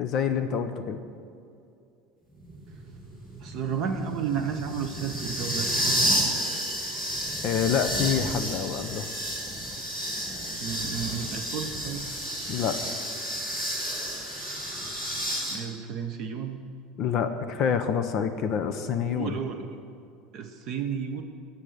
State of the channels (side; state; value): both; normal; correlation 0.33